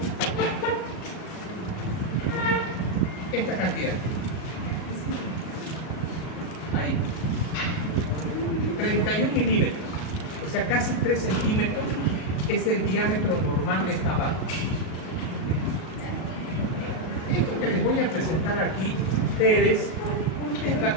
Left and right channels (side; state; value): right; late; 38 ms